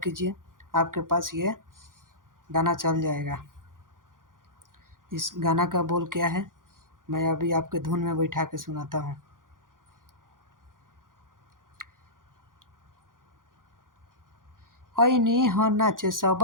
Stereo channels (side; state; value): left; late; 0.90 ms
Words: आपके पास ये गाना चल जाएगा। इस गाना का बोल क्या है, मैं अभी आपके धुन में बैठा के सुनाता हूँ। ऐनी ह नाचे सब